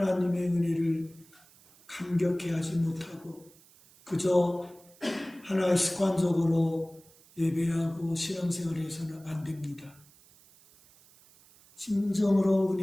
은혜를 감격해 하지 못하고 그저 하나의 습관적으로 예배하고 신앙생활을 해서는 안 됩니다. 진정으로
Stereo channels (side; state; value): right; noise; hiss, 27 dB below the sound